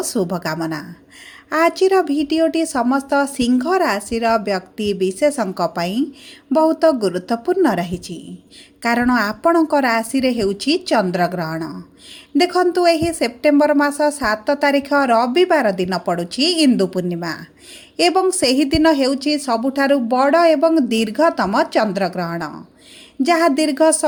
शुभकामना। आजिर भिडियोटी समस्त सिंह राशि व्यक्ति विशेषों बहुत गुरुत्वपूर्ण रही कारण आपणक राशि हेउछि चंद्रग्रहण। देखंतु एही सेप्टेम्बर मास 7 तारिख रविवार दिन पड़ुछि इंदु पूर्णिमा एवं सही दिन हेउछि सबुठारु बड़ एवं दीर्घतम चंद्रग्रहण जहाँ दीर्घ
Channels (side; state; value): both; identical; correlation 1.00